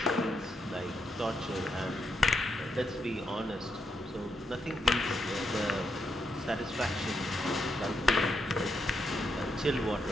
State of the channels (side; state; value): both; normal; correlation 0.79